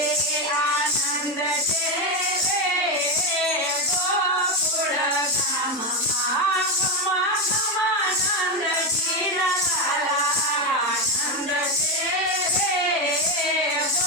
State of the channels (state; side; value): normal; both; correlation 0.11